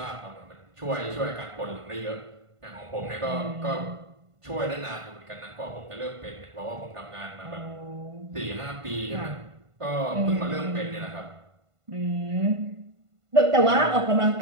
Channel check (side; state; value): left; late; 1.5 ms